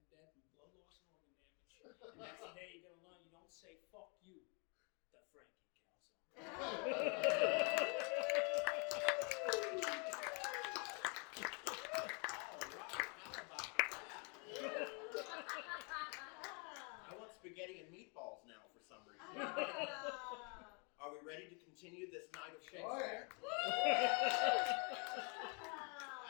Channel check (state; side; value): quieter; right; 35.2 dB